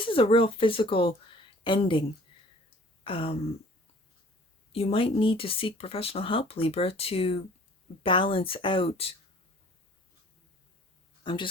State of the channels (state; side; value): normal; both; correlation 0.52